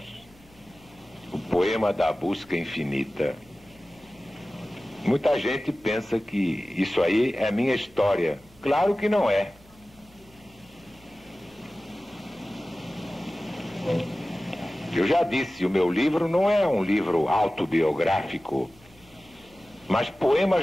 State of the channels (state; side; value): normal; both; correlation 0.96